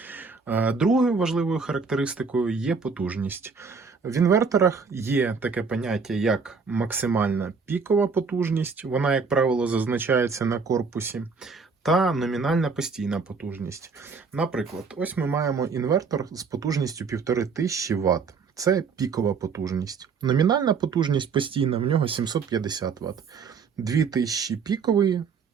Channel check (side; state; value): left; quieter; 5.2 dB